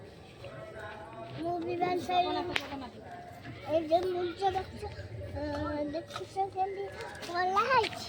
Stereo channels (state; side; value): identical; both; correlation 1.00